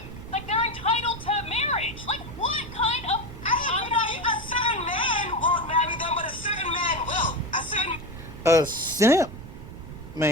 Like, they're entitled to marriage. Like, what kind of? A certain man won't marry them, but a certain man will. A simp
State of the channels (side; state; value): right; noise; rumble, 12 dB below the sound